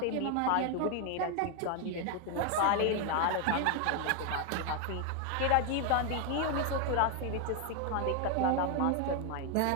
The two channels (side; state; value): both; different; correlation 0.01